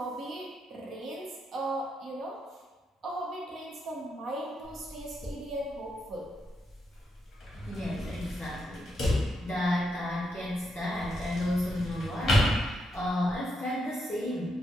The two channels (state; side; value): normal; both; correlation 0.82